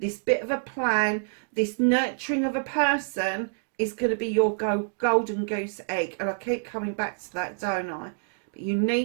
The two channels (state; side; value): silent; left; digital silence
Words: this bit of a plan, this nurturing of a person, is going to be your golden goose egg. And I keep coming back to that, don't I? But you